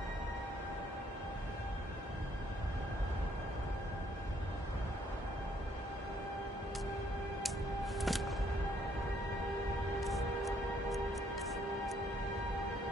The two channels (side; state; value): both; normal; correlation 0.67